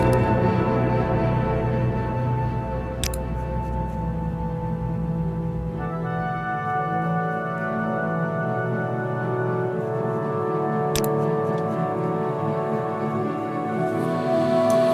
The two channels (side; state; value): both; identical; correlation 1.00